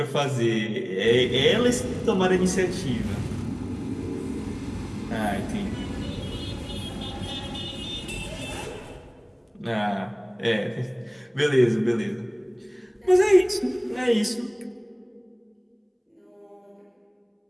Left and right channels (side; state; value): both; identical; correlation 1.00